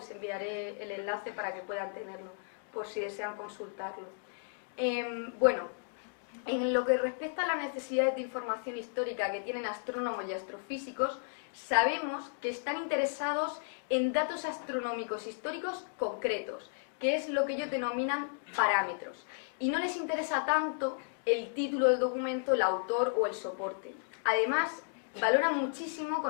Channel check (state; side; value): silent; right; digital silence